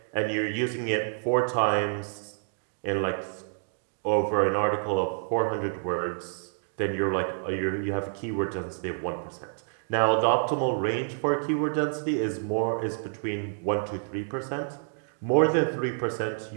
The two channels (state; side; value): silent; left; digital silence